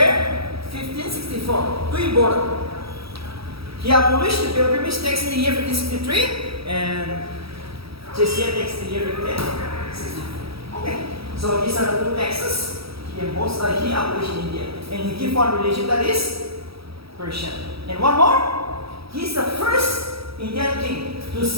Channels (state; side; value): late; left; 0.76 ms